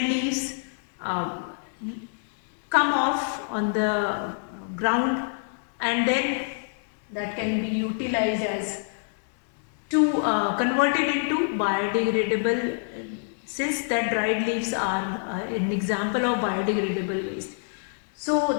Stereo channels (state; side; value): silent; right; digital silence